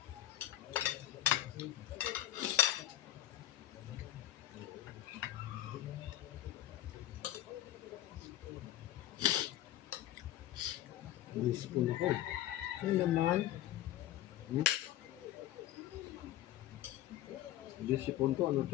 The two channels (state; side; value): quieter; right; 13.6 dB